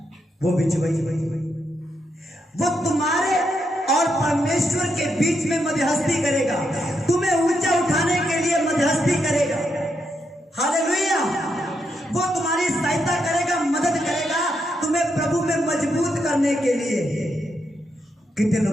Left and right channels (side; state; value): both; normal; correlation 0.81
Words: वो बिचवई, वो तुम्हारे और परमेश्वर के बीच में मध्यस्थी करेगा, तुम्हें ऊंचा उठाने के लिए मध्यस्थी करेगा। हालेलुया। वो तुम्हारी सहायता करेगा, मदद करेगा, तुम्हें प्रभु में मजबूत करने के लिए। कितने